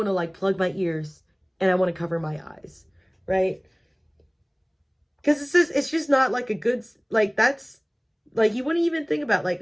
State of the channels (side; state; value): both; identical; correlation 1.00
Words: to like plug my ears and I want to cover my eyes, right? Because it's just not like a good, like, that's like, you wouldn't even think about